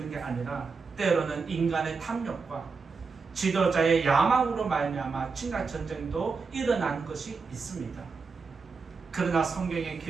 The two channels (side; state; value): left; quieter; 4.8 dB